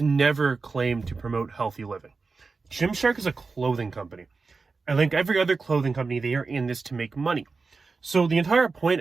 never claimed to promote healthy living. Gymshark is a clothing company. And like every other clothing company, they are in this to make money. So the entire point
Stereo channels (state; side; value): quieter; left; 4.3 dB